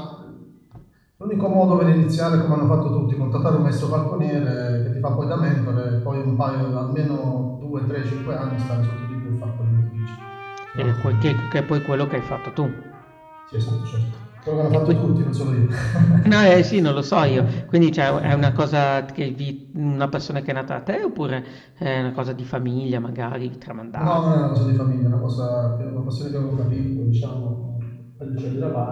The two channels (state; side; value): identical; both; correlation 1.00